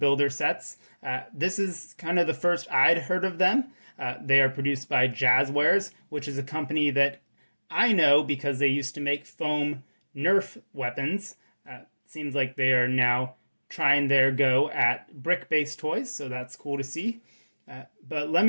sets. This is kind of the first I'd heard of them. They are produced by Jazzwares, which is a company that I know because they used to make foam Nerf weapons. Seems like they are now trying their go at brick-based toys, so that's cool to see. But let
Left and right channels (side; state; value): both; inverted; correlation -1.00